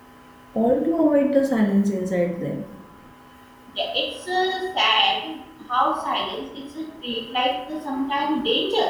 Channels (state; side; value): identical; both; correlation 1.00